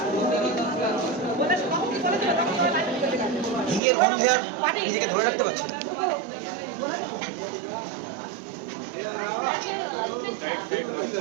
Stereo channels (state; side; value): drops out; left; at 3.8 s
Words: হিঙের গন্ধে আর নিজেকে ধরে রাখতে পারছি না।